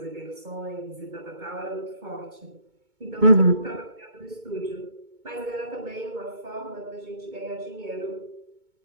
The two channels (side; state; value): left; late; 2.2 ms